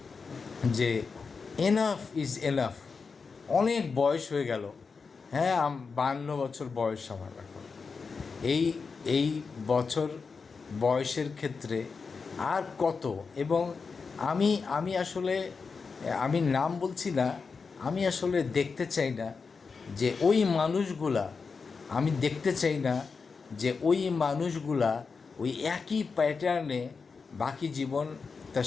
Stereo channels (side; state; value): right; quieter; 5.0 dB